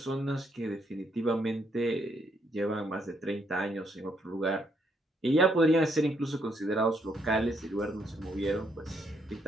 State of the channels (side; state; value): both; normal; correlation 0.73